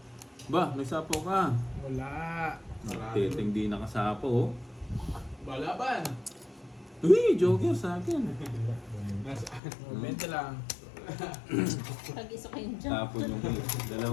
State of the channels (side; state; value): right; drops out; at 9.6 s